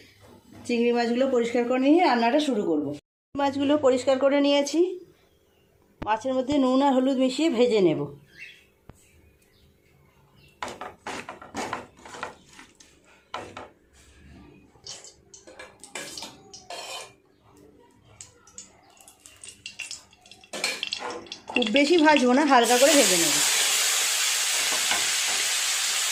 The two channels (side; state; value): both; identical; correlation 1.00